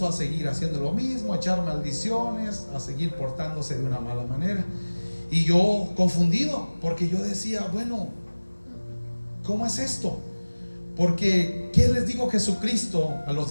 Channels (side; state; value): both; inverted; correlation -1.00